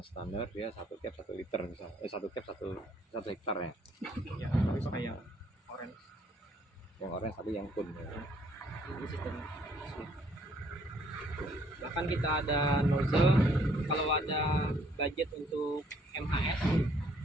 standar dia 1 cap 1 liter misal. 1 cap 1 hektar ya. Ya tapi pakai yang orange. Yang orange tapi yang kun ya. Ini sistemnya. Bahkan kita ada nozzle kalau ada budget untuk MHS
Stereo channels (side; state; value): both; normal; correlation 0.65